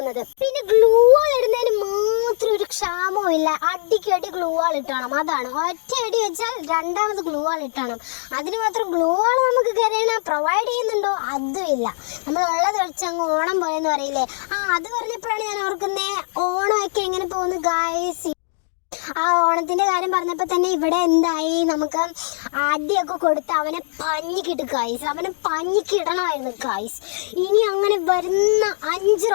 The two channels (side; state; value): right; silent; digital silence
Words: പിന്നെ ഗ്ലൂ വാൾ ഇടുന്നതിന് മാത്രം ഒരു ക്ഷാമവും ഇല്ല. അടിക്കടി ഗ്ലൂ വാൾ ഇട്ടണം. അതാണ് ഒറ്റ അടി വെച്ചാൽ രണ്ടാമത് ഗ്ലൂ വാൾ ഇട്ടണം. അതിന് മാത്രം ഗ്ലൂ വാൾ നമുക്ക് കരയണ പ്രൊവൈഡ് ചെയ്യുന്നുണ്ടോ? അതും ഇല്ല. നമ്മൾ ഉള്ളത് വെച്ചങ്ങ് ഓണം പോയെന്ന് പറയില്ലേ? അത് പറഞ്ഞപ്പോഴാണ് ഞാൻ ഓർക്കുന്നേ, ഓണമൊക്കെ എങ്ങനെ പോകുന്നു ഗായ്സ്. ആ ഓണത്തിന്റെ കാര്യം പറഞ്ഞപ്പോൾ തന്നെ ഇവിടെ എന്തായി, നമുക്ക് അടിയൊക്കെ കൊടുത്ത് അവനെ പഞ്ഞിക്കിട്ട് ഗായ്സ്. അവനെ പഞ്ഞിക്കിടണമായിരുന്നു ഗായ്സ്. ഇനി അങ്ങനെ വരുന്ന 5